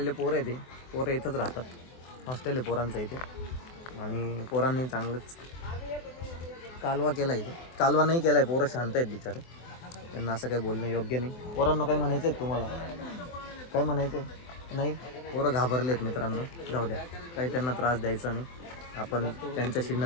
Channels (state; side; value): late; right; 24 ms